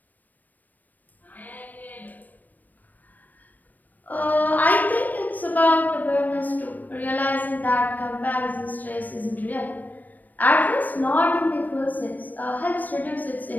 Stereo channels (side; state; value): right; late; 0.085 ms